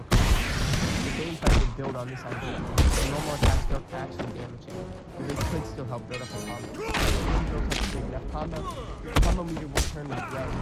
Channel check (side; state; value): both; identical; correlation 1.00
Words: combo. The Bane fight would build on this idea. The normal attacks don't actually damage him, but they could still help build up a combo. If you build up a big enough combo, your combo meter will turn red,